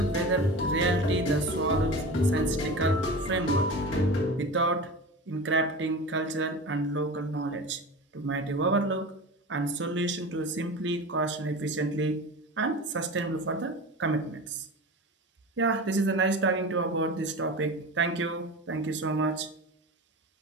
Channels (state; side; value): normal; both; correlation 0.31